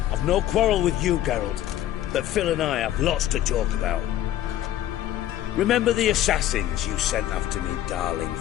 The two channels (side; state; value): right; quieter; 12.7 dB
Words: I've no quarrel with you, Geralt, but Phil and I have lots to talk about. Remember the assassins you sent after me, darling